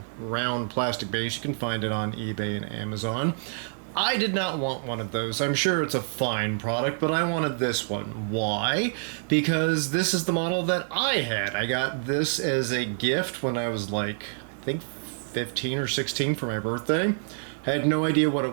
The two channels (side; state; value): left; silent; digital silence